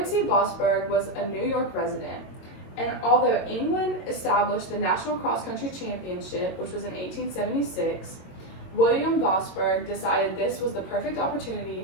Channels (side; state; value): right; late; 22 ms